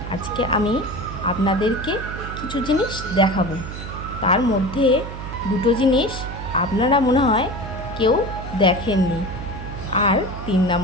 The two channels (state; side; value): noise; right; hum, 9 dB below the sound